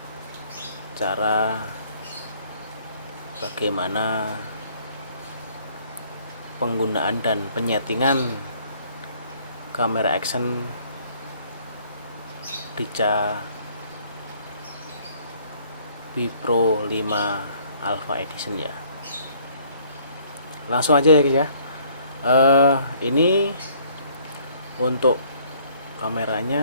cara bagaimana penggunaan dan penyetingan kamera action Ricoh B Pro 5 Alpha Edition ya. Langsung aja ya guys ya. Ini untuk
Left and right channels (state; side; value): inverted; both; correlation -0.60